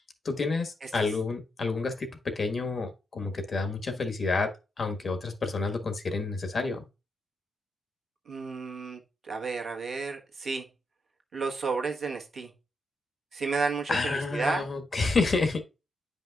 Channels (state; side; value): normal; both; correlation 0.82